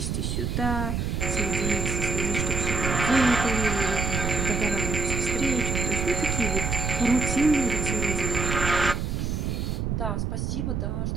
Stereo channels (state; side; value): noise; right; rumble, 1 dB below the sound